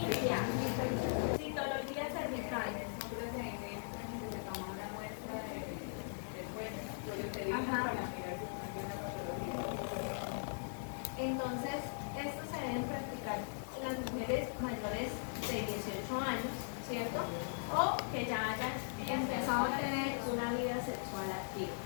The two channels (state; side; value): silent; right; digital silence